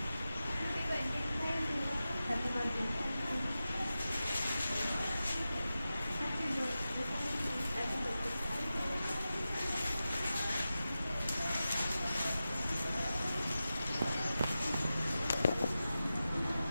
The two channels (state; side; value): inverted; both; correlation -0.93